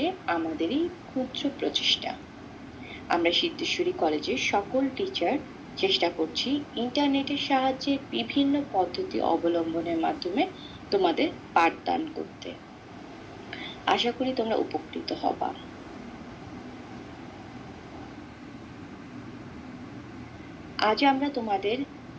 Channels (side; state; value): both; identical; correlation 1.00